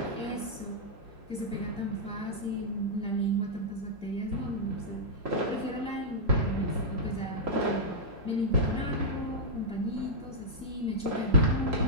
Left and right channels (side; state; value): both; normal; correlation -0.08